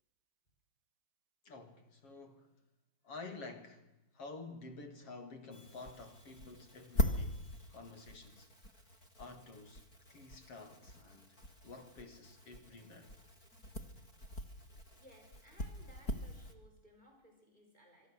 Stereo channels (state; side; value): late; right; 4.4 ms